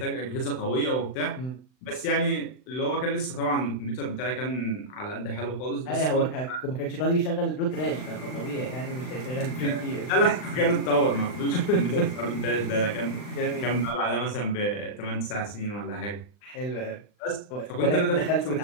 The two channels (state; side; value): late; right; 39 ms